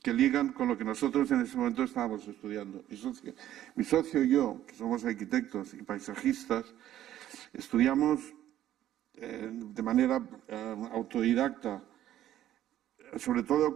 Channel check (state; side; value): quieter; left; 12.4 dB